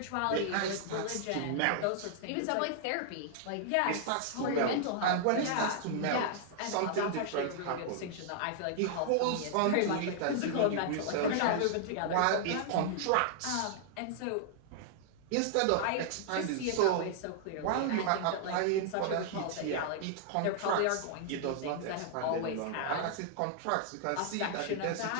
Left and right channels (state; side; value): different; both; correlation -0.01